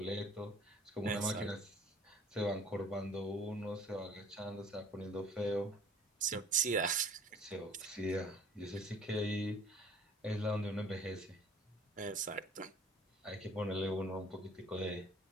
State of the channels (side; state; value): both; normal; correlation 0.52